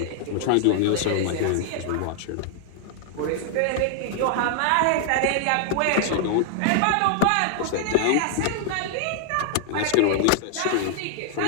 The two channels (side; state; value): both; different; correlation 0.00